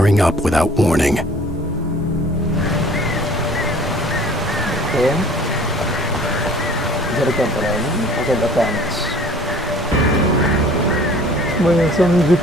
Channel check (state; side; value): normal; both; correlation 0.50